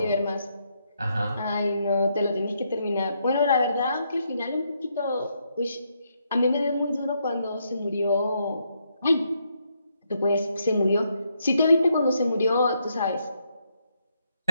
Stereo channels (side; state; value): both; inverted; correlation -0.77